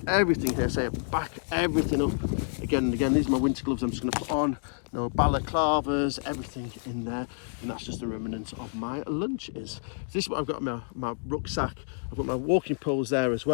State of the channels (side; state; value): right; silent; digital silence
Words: everything here, so I back everything up. Again and again, these are my winter gloves I'm just going to put on. No balaclavas, everything in there, and that's just the remnants of my lunches. So this is what I've got in my rucksack. I've got my walking poles there as